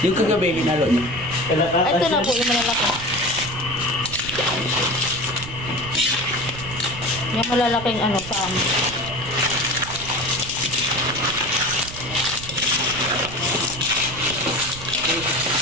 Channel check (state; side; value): noise; right; rumble, 12 dB below the sound